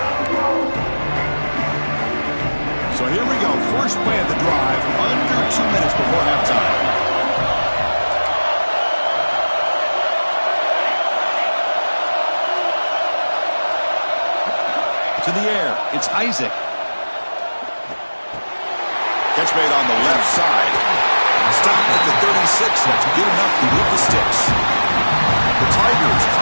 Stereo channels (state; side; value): inverted; both; correlation -1.00